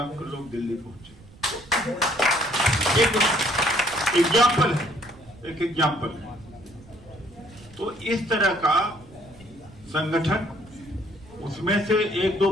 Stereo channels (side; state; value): right; noise; rumble, 22 dB below the sound